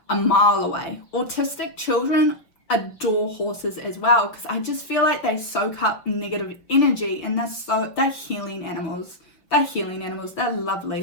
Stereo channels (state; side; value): late; right; 6.0 ms